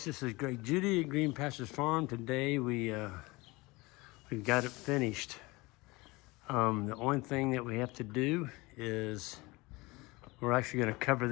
This is Greg Judy at Green Pastures Farm. Today we've got it finished. The only thing that we have to do is we're actually going to cover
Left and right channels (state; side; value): quieter; right; 23.2 dB